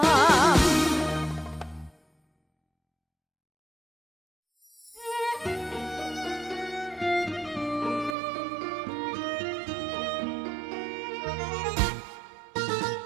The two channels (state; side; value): drops out; left; at 8.2 s